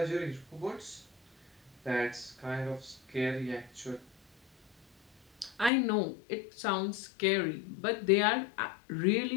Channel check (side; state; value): right; drops out; at 5.7 s